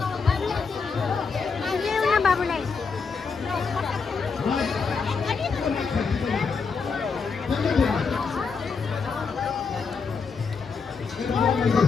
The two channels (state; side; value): quieter; right; 5.2 dB